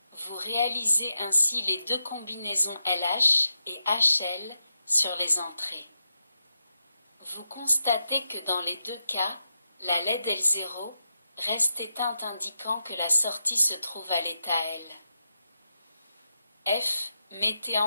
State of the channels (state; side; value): inverted; both; correlation -0.87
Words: Vous réalisez ainsi les deux combinaisons LH et HL sur les entrées. Vous constatez que dans les deux cas, la LED L0 reste éteinte indiquant que la sortie se trouve à l'état L. F. Mettez